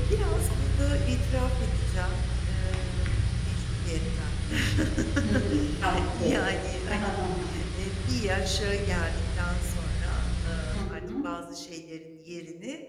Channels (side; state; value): both; identical; correlation 1.00